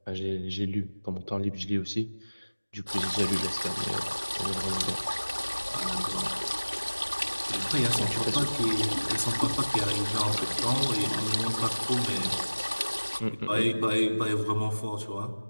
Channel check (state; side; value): inverted; both; correlation -1.00